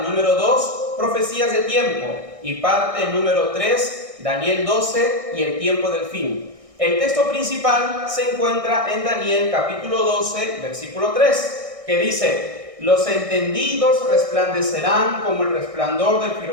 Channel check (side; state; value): left; late; 1.6 ms